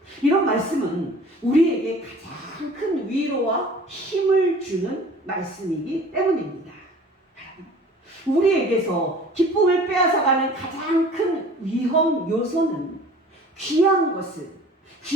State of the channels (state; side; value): normal; both; correlation 0.47